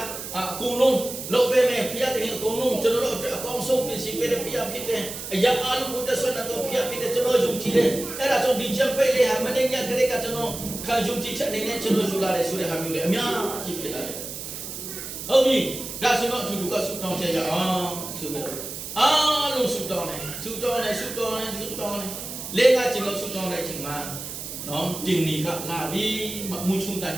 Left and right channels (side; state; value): right; noise; hiss, 8 dB below the sound